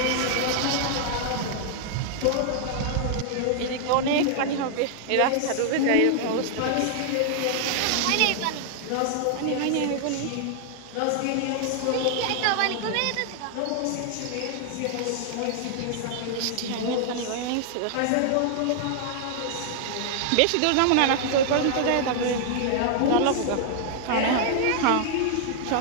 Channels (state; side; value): different; both; correlation -0.01